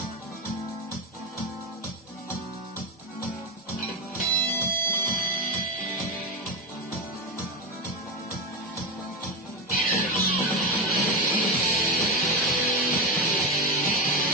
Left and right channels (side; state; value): both; normal; correlation 0.13